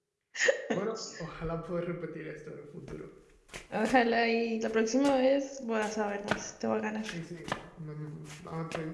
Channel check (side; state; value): both; identical; correlation 1.00